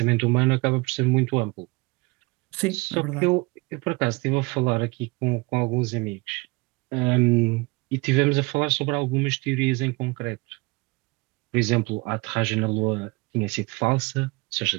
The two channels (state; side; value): quieter; left; 25.7 dB